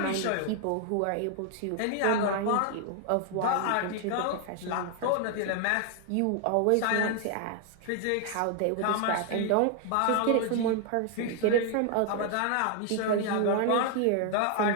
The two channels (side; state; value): both; different; correlation 0.00